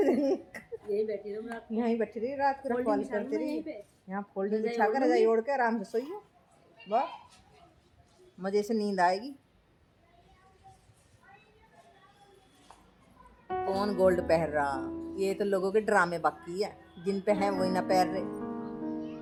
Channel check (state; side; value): identical; both; correlation 1.00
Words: रहिए। यही बैठी रहो रात को। यहीं बैठी रही रात को, रखवाली करते यहीं रहिए। पे यहाँ फोल्डिंग रजाई बिछा कर ओढ़ रजाई लूंगी। ओढ़ के आराम से सोइए। वाह, मजे से नींद आएगी। कौन गोल्ड पहन रहा? ये तो लोगों के ड्रामे बाकी है, जिन पे है वही ना पहन रहे।